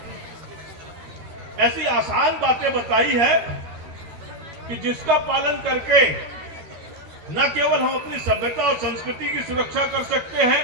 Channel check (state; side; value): late; left; 13 ms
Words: ऐसी आसान बातें बताई है कि जिसका पालन करके न केवल हम अपनी सभ्यता और संस्कृति की सुरक्षा कर सकते हैं,